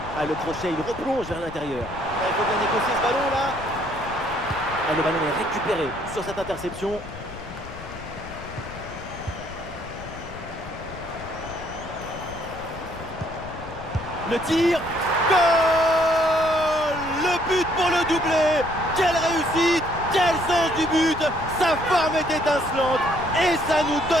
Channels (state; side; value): noise; left; rumble, 14 dB below the sound